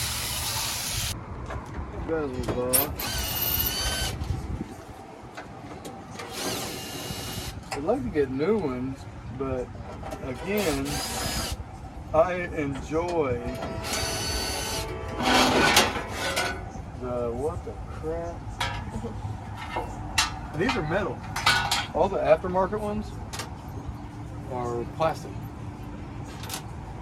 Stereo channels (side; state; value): both; identical; correlation 1.00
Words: Bezels off. I'd like to get new ones, but again, I enjoy the what the crap? And these are metal. All the aftermarket ones are plastic.